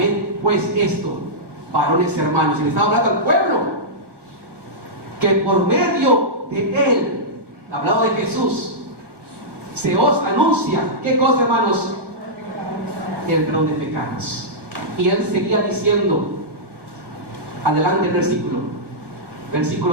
pues esto, varones y hermanos, y le estaba hablando al pueblo, que por medio de Él, hablado de Jesús, se os anuncia, ¿qué cosa, hermanos? El perdón de pecados. Y él seguía diciendo, adelante el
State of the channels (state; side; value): late; left; 1.1 ms